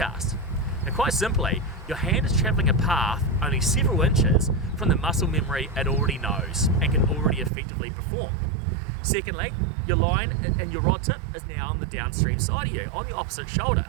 Now quite simply, your hand is travelling a path only several inches from the muscle memory it already knows and can already effectively perform. Secondly, your line and your rod tip is now on the downstream side of you, on the opposite shoulder.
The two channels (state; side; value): drops out; left; at 7.5 s